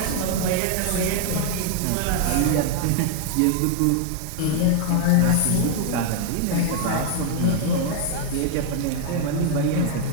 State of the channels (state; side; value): different; both; correlation 0.00